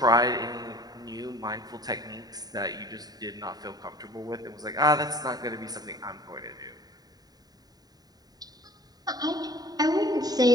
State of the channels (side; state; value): left; late; 0.19 ms